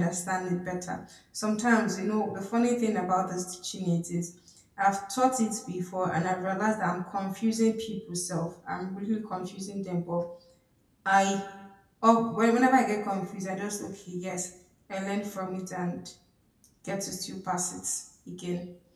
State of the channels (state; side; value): identical; both; correlation 1.00